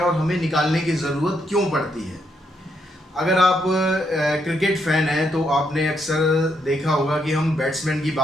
और हमें निकालने की ज़रूरत क्यों पड़ती है। अगर आप क्रिकेट फैन हैं तो आपने अक्सर देखा होगा कि हम बैट्समैन की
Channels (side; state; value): both; normal; correlation 0.77